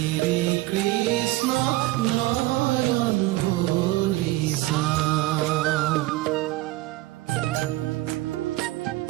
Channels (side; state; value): left; quieter; 18.3 dB